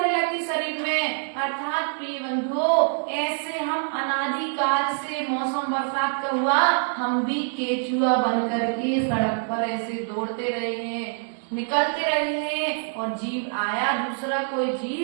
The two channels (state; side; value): silent; left; digital silence